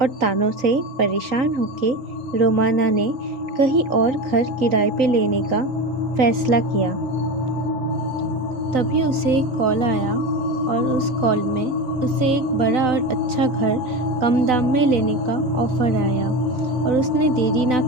और तानों से परेशान होके रोमाना ने कहीं और घर किराए पे लेने का फैसला किया। तभी उसे एक कॉल आया और उस कॉल में उसे एक बड़ा और अच्छा घर कम दाम में लेने का ऑफ़र आया और उसने देरी ना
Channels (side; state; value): left; late; 3.9 ms